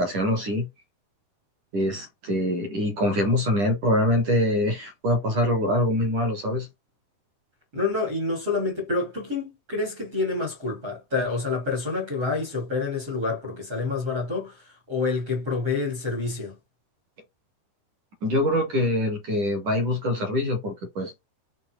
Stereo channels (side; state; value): left; late; 10 ms